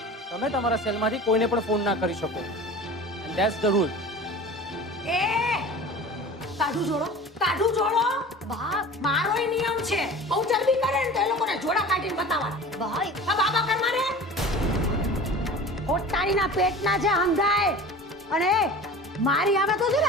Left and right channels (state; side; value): normal; both; correlation 0.38